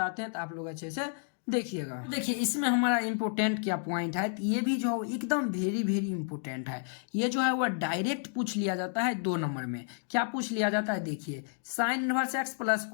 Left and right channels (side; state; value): right; silent; digital silence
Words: हैं, तो आप लोग अच्छे से देखिएगा। देखिए इसमें हमारा इम्पोर्टेंट क्या पॉइंट है, तो ये भी जो है एकदम वेरी वेरी इंपॉर्टेंट है। ये जो है वो डायरेक्ट पूछ लिया जाता है 2 नंबर में। क्या पूछ लिया जाता है, देखिए sine inverse x plus